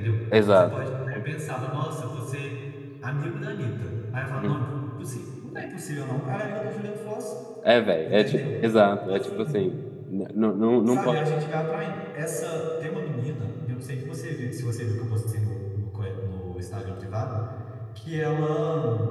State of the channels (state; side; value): identical; both; correlation 1.00